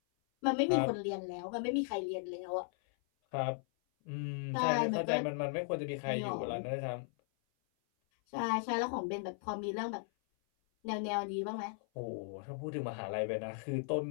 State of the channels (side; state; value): right; silent; 53 dB below the other